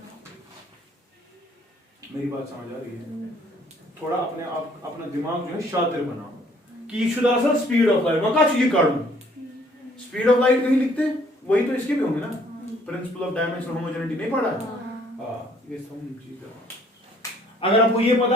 मेरी बात समझ आ रही है थोड़ा अपने आप अपना दिमाग जो है शातिर बनाओ कि शुद्ध असल स्पीड ऑफ लाइट मैं क्या चीज काढूं स्पीड ऑफ लाइट कहीं लिखते वही तो इसके भी होंगे ना प्रिंसिपल ऑफ डायमेंशनल होमोजेनिटी नहीं पढ़ा हां ये सब चीज अगर आपको ये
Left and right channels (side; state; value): both; normal; correlation 0.61